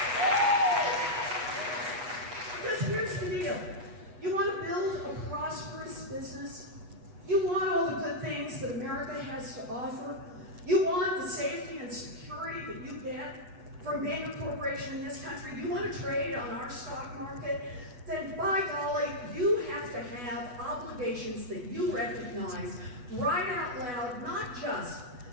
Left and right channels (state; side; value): late; left; 8.1 ms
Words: Because here's the deal. You want to build a prosperous business? You want all the good things that America has to offer? You want the safety and security that you get from being a corporation in this country? You want to trade on our stock market? Then by golly, you have to have obligations that you recognize right out loud, not just